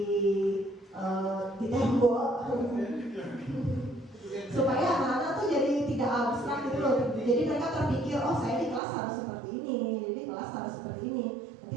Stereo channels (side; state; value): left; drops out; at 8.8 s